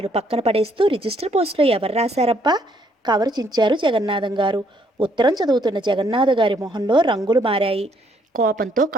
పక్కన పడేస్తూ, రిజిస్టర్ పోస్టులో ఎవరు రాశారబ్బా? కవరు చించారు జగన్నాథం గారు. ఉత్తరం చదువుతున్న జగన్నాథ గారి మొహంలో రంగులు మారాయి. కోపంతో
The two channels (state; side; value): normal; both; correlation 0.69